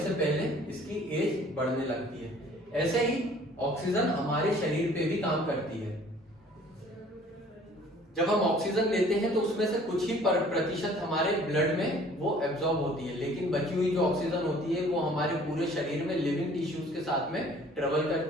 पहले इसकी एज बढ़ने लगती है। ऐसे ही ऑक्सीजन हमारे शरीर पे भी काम करती है। जब हम ऑक्सीजन लेते हैं तो उसमें से कुछ ही प्रतिशत हमारे ब्लड में वो एब्जॉर्ब होती है, लेकिन बची हुई जो ऑक्सीजन होती है वो हमारे पूरे शरीर में लिविंग टिश्यूज के साथ में ट्रेवल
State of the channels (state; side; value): normal; both; correlation 0.53